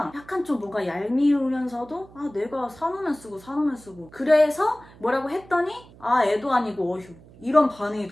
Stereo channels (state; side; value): noise; right; hum, 23 dB below the sound